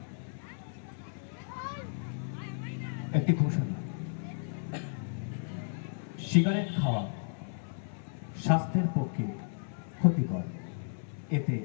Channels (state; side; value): silent; right; 55 dB below the other